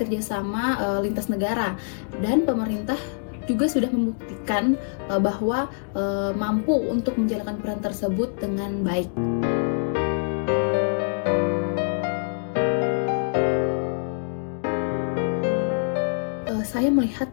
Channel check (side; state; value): right; silent; digital silence